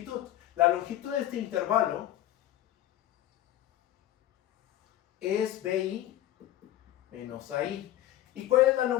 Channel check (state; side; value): quieter; right; 13.5 dB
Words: La longitud de este intervalo es BI menos AI. ¿Y cuál es la